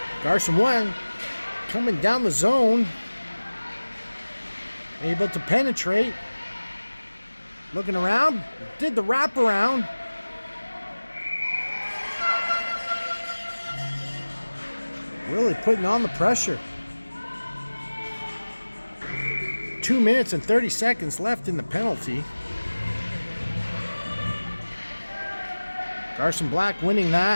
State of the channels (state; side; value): inverted; both; correlation -1.00